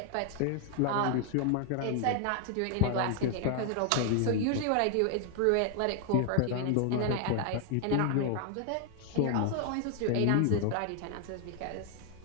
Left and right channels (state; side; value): different; both; correlation 0.00